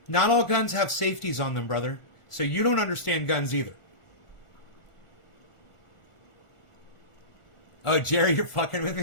not all guns have safeties on them, brother. So you don't understand guns either. Oh, Jerry, you're fucking with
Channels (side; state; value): right; late; 1.4 ms